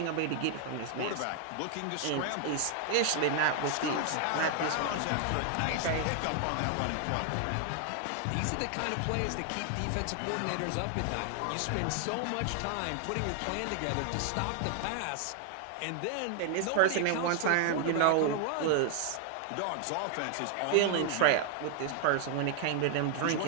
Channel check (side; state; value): both; different; correlation 0.00